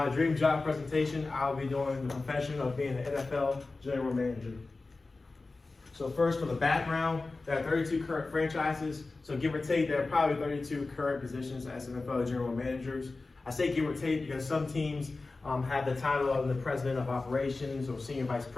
dream job presentation, I'll be doing the profession of being an NFL general manager. So first, for the background, there are 32 current franchises, so give or take, there are probably 32 current positions as NFL general managers. I say give or take because some teams have the title of the president of operations or senior vice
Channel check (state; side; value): quieter; right; 3.6 dB